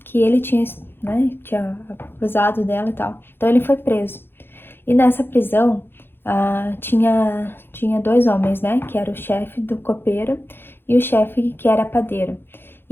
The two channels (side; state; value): right; late; 0.10 ms